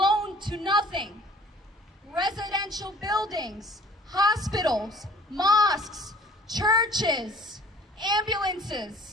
to nothing. Residential buildings, hospitals, mosques, churches,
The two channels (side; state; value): both; normal; correlation 0.52